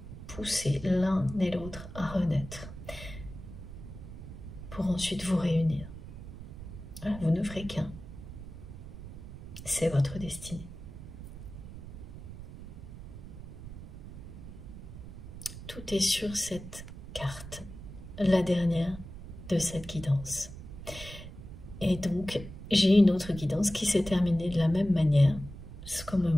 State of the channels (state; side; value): noise; right; rumble, 12 dB below the sound